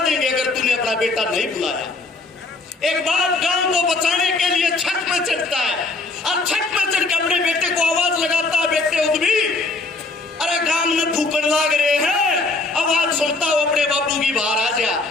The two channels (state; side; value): quieter; right; 3.5 dB